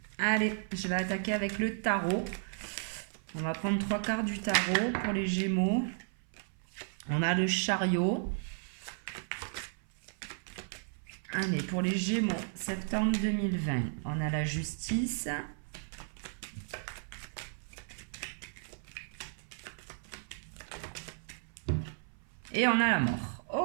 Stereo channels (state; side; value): silent; left; 55 dB below the other